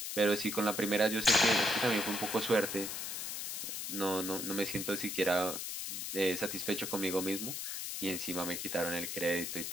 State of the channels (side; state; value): left; noise; hiss, 4 dB below the sound